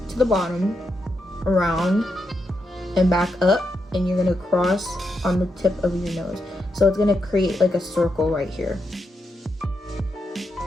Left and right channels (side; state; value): both; normal; correlation 0.83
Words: to the bottom, around, and back up, and you're gonna cross on the tip of your nose. So it's gonna create like a circle right here.